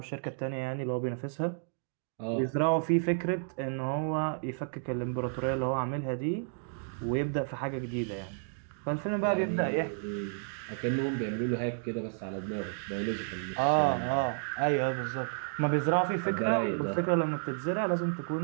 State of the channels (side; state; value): left; silent; digital silence